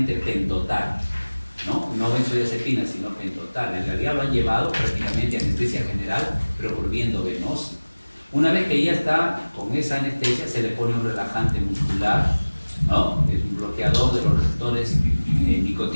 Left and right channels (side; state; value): both; inverted; correlation -1.00